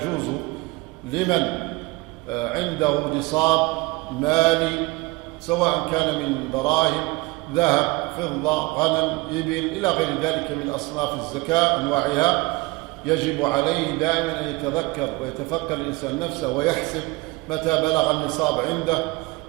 لمن عنده نصاب مالي، سواء كان من دراهم، ذهب، فضة، غنم، إبل، إلى غير ذلك من أصناف الزكاة أنواعها، يجب عليه دائما أن يتذكر ويتفكر الإنسان نفسه ويحسب متى بلغ النصاب عنده،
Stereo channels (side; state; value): left; quieter; 23.7 dB